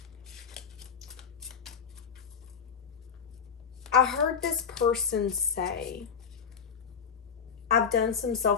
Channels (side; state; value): right; quieter; 6.8 dB